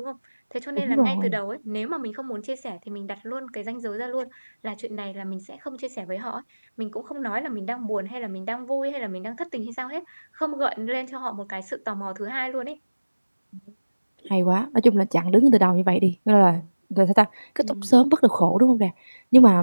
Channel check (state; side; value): inverted; both; correlation -1.00